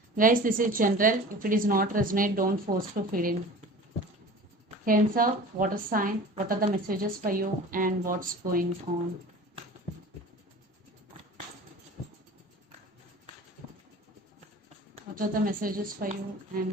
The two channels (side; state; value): both; normal; correlation 0.39